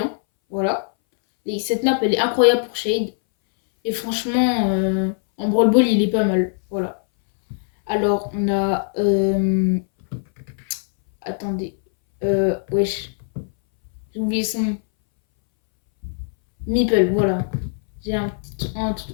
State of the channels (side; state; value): right; silent; 62 dB below the other